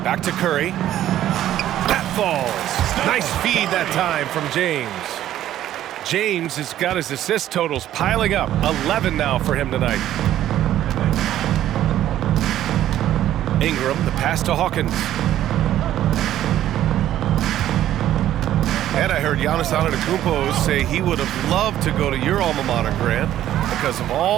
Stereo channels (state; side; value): quieter; left; 12.4 dB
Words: Back to Curry. That falls. Nice feed that time from James. James has got his assist totals piling up. 11 now for him tonight. Ingram, the pass to Hawkins. And I heard Giannis Antetokounmpo say he would have loved to go to your alma mater, Grant, because of